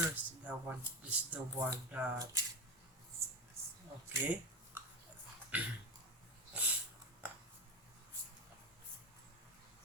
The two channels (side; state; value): both; normal; correlation 0.20